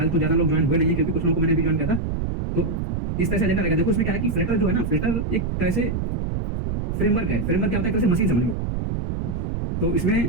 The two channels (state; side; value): noise; right; rumble, 2 dB below the sound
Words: तो ज्यादा लोग ज्वाइन हुए नहीं है, क्योंकि कुछ लोगों को मैंने अभी ज्वाइन किया था। तो इस तरह से एजेंडा रहेगा। देखो इसमें क्या है कि फ्लटर जो है ना, फ्लटर एक तरह से फ्रेमवर्क है। फ्रेमवर्क क्या होता है, एक तरह से मशीन समझ लो। तो